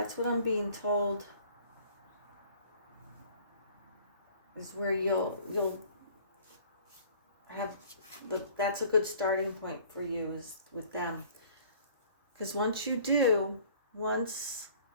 what I'm being told is where you'll have that's a good starting point for you is with them. Because once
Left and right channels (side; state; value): both; inverted; correlation -0.53